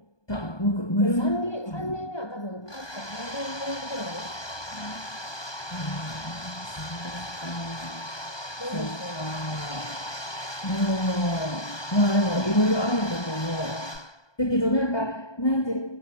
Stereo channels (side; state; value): right; late; 1.2 ms